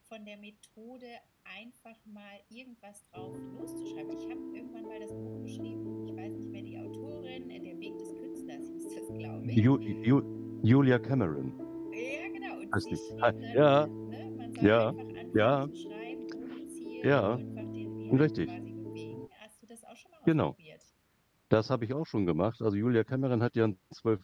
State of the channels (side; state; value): both; identical; correlation 1.00